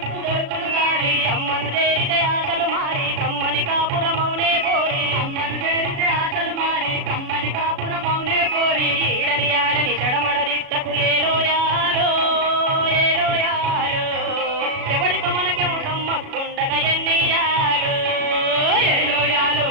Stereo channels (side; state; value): left; late; 36 ms